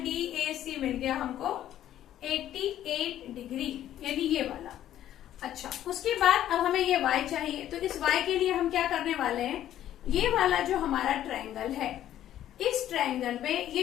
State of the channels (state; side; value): quieter; right; 12.0 dB